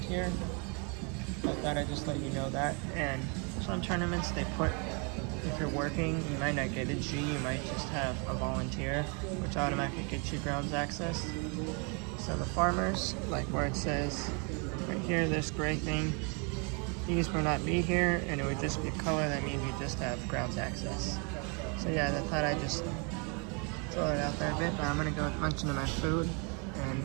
I thought I'd just let you know that. And some tournaments they put, if you're working, you might not get a G, you might just have a volunteer, which automatically gets you grounds access. So the farmers, like where it says right here, this gray thing, these will not be here, and it would just be a color that means you just have grounds access. So yeah, I thought I'd just throw it out there a bit, but I'm gonna go munch into my food. And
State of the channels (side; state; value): left; quieter; 34.5 dB